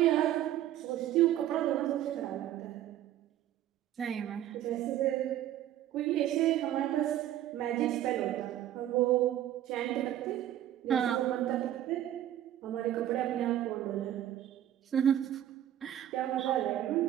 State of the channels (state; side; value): quieter; left; 12.3 dB